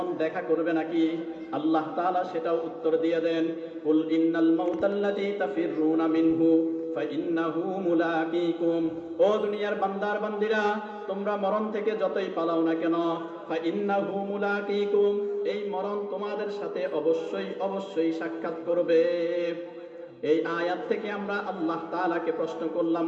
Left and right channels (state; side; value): identical; both; correlation 1.00